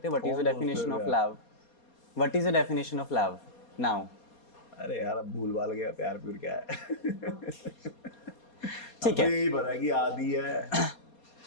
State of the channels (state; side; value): late; right; 4.2 ms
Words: हैं? व्हाट इज द कौन दोस्त डेफिनेशन है ऑफ यार? Love? What is the definition of love now? अरे यार, अब भूल भाल गया प्यार प्यूर क्या है। ठीक है। अब तो यही पता है कि आदि है